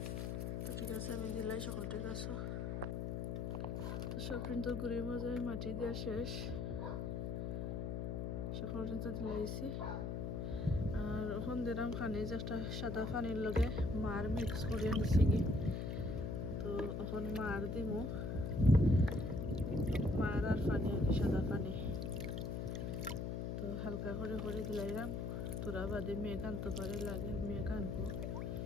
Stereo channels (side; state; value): left; noise; hum, 2 dB below the sound